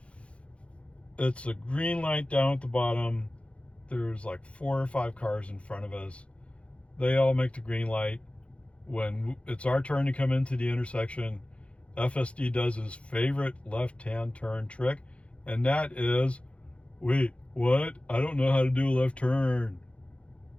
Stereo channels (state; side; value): late; right; 0.061 ms